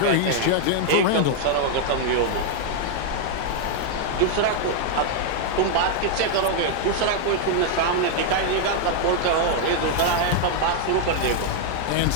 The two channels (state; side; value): different; both; correlation 0.00